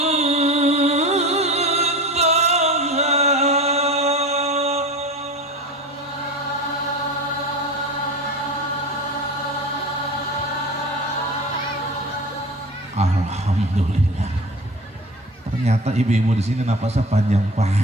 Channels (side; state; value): both; normal; correlation 0.33